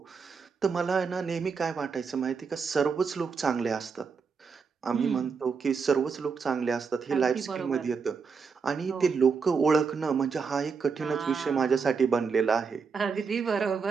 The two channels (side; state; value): left; quieter; 5.5 dB